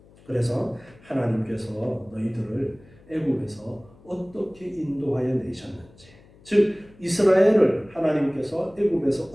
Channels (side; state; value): left; noise; hum, 26 dB below the sound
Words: 그래서 하나님께서 너희들을 애굽에서 어떻게 인도하여 내셨는지, 즉 이스라엘을 하나님께서 애굽에서